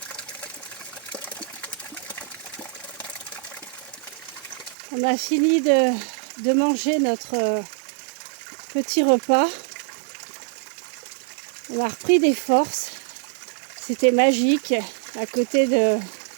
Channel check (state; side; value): drops out; left; at 4.8 s